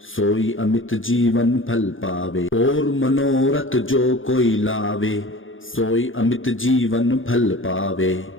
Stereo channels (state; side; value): late; right; 0.58 ms